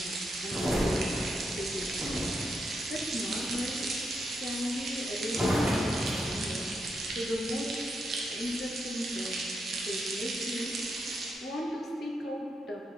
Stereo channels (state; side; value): normal; both; correlation 0.82